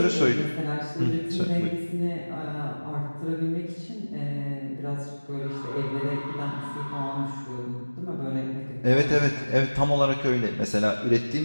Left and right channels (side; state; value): both; inverted; correlation -1.00